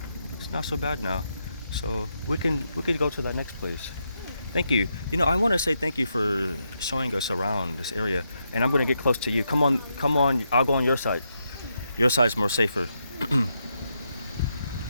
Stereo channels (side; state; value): both; inverted; correlation -0.82